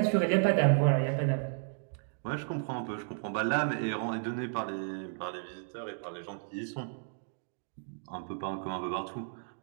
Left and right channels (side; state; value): left; silent; digital silence